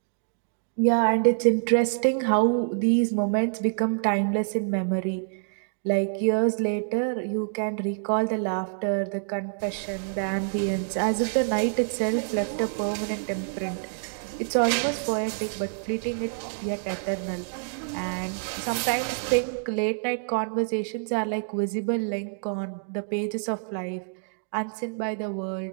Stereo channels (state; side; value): silent; left; digital silence